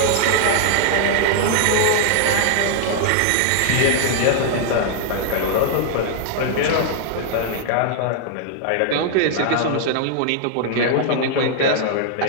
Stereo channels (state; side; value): different; both; correlation 0.00